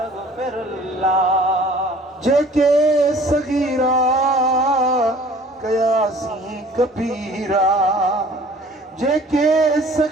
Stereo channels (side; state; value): both; normal; correlation 0.51